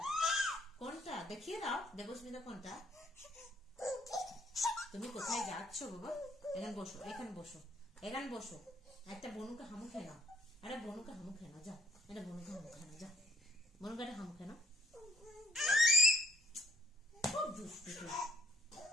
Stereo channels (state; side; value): normal; both; correlation 0.64